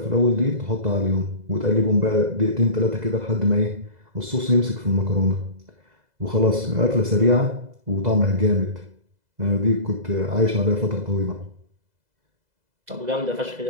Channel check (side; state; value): left; late; 2.0 ms